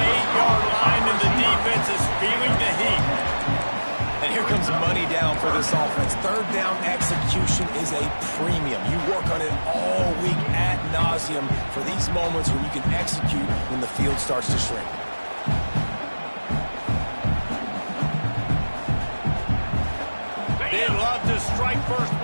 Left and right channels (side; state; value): both; inverted; correlation -1.00